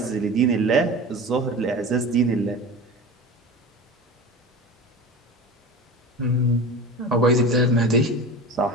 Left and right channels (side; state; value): both; normal; correlation 0.32